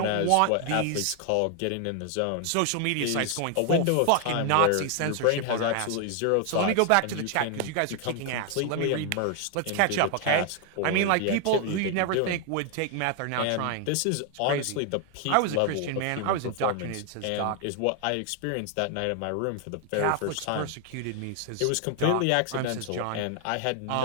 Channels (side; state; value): both; different; correlation 0.00